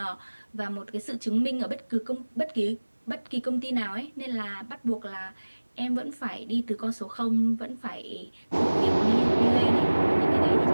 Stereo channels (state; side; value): inverted; both; correlation -1.00